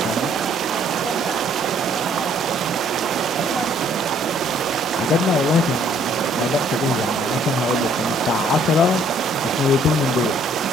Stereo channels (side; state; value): both; normal; correlation 0.63